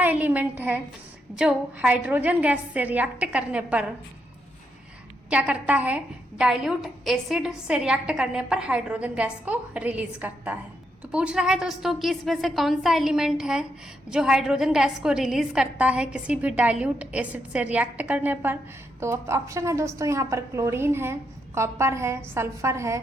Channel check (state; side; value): normal; both; correlation 0.80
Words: एलिमेंट है जो हाइड्रोजन गैस से रिएक्ट करने पर क्या करता है? डाइल्यूट एसिड से रिएक्ट करने पर हाइड्रोजन गैस को रिलीज करता है। तो पूछ रहा है दोस्तों कि इसमें से कौन सा एलिमेंट है जो हाइड्रोजन गैस को रिलीज करता है किसी भी डाइल्यूट एसिड से रिएक्ट करने पर। तो ऑप्शन है दोस्तों यहाँ पर क्लोरीन है, कॉपर है, सल्फर है